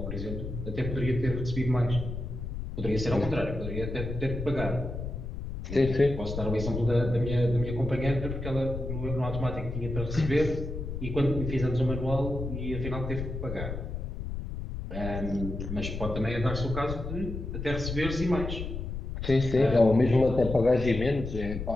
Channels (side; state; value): left; noise; rumble, 6 dB below the sound